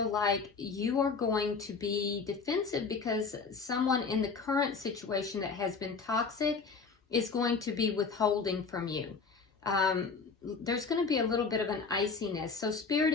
like you are going to be defensive because someone in the current situation that has been toxic is going to be withholding from you. There's going to be a little bit of an iciness. So Spirit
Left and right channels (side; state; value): right; quieter; 4.9 dB